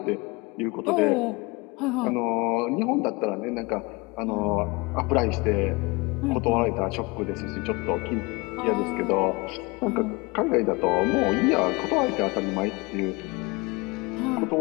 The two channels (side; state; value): right; quieter; 25.6 dB